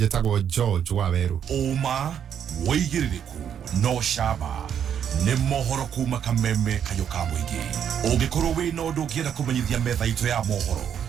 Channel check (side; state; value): left; quieter; 8.7 dB